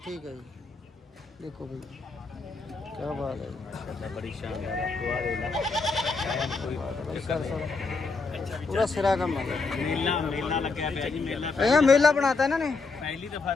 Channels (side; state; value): right; quieter; 4.1 dB